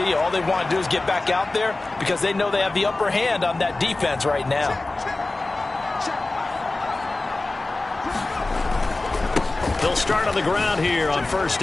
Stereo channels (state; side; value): quieter; right; 3.1 dB